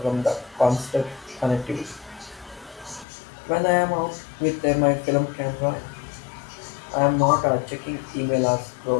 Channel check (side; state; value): right; drops out; at 3.1 s